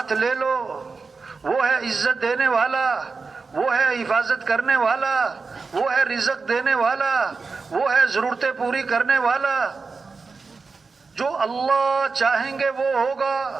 لے لو، وہ ہے عزت دینے والا، وہ ہے حفاظت کرنے والا، وہ ہے رزق دینے والا، وہ ہے ضرورتیں پوری کرنے والا۔ جو اللہ چاہیں گے وہ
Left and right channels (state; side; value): quieter; left; 4.5 dB